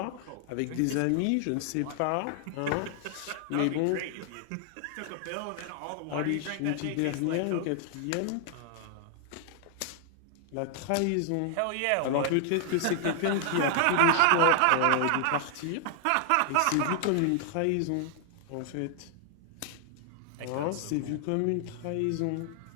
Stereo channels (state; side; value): different; both; correlation 0.00